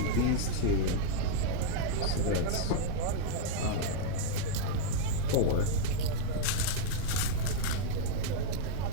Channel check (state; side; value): different; both; correlation -0.01